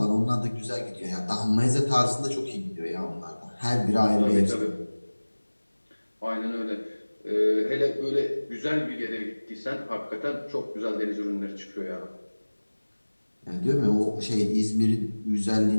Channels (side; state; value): both; inverted; correlation -1.00